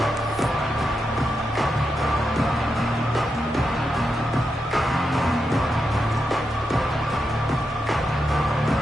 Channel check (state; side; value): normal; both; correlation 0.86